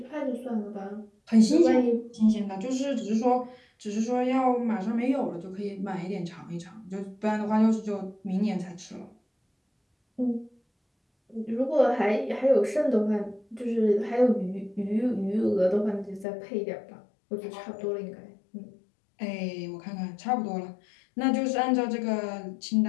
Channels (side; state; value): right; drops out; at 16.2 s